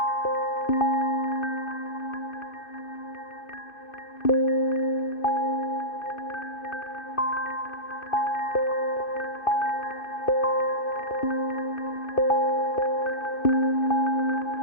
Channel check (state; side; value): late; right; 2.6 ms